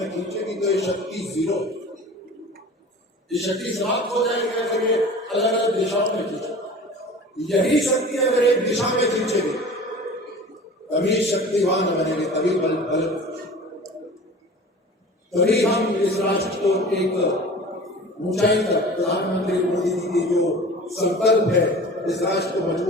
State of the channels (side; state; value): both; normal; correlation 0.39